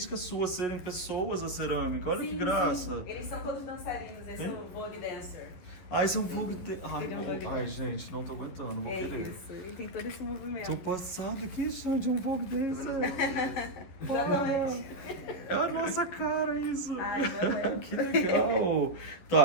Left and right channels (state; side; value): late; right; 11 ms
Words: sua serem pessoas a cerâmica. Olha que graça. Sim. Eles são todos dançarinos, esse é o Vogue Dancer. Ah, esse é um fogo de... Ai, Ele é um bom. fogo. Ai, gente, não tô aguentando, vou É querer. isso, ele tem todo esse movimento. Tô passado aqui, chão de um fogo desse. Exatamente. É a nossa cara isso. Ai, não é. Que legal.